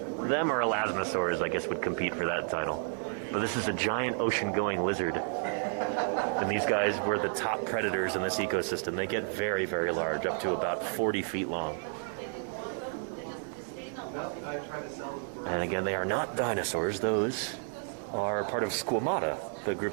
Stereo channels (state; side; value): silent; left; 57 dB below the other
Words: Them or elasmosaurs, I guess, would compete for that title. But this is a giant ocean-going lizard. And these guys were the top predators in this ecosystem. They get very, very large, up to about 40 feet long. And again, they are not dinosaurs. Those are part of Squamata, the